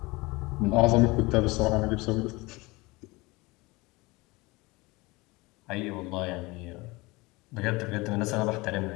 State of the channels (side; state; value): right; quieter; 23.4 dB